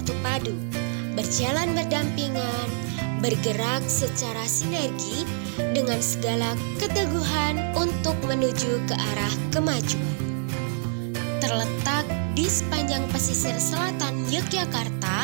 padu, berjalan berdampingan, bergerak secara sinergi dengan segala keteguhan untuk menuju ke arah kemajuan. Terletak di sepanjang pesisir selatan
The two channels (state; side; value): silent; left; 59 dB below the other